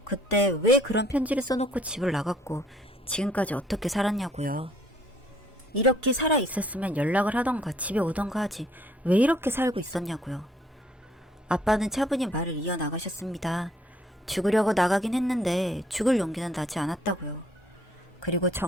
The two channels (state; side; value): normal; both; correlation 0.62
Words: 그때 왜 그런 편지를 써놓고 집을 나갔고 지금까지 어떻게 살았냐고요. 이렇게 살아있었으면 연락을 하던가 집에 오던가 하지 왜 이렇게 살고 있었냐고요. 아빠는 차분히 말을 이어나가셨습니다. 죽으려고 나가긴 했는데 죽을 용기는 나지 않았다고요. 그리고